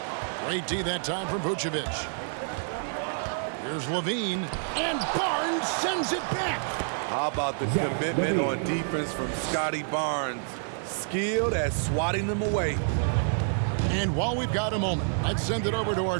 Great D that time from Vucevic. Here's Levine, and Barnes sends it back. How about the commitment on defense from Scotty Barnes? Skilled at swatting them away. And while we've got a moment, let's send it over to our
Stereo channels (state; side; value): silent; left; digital silence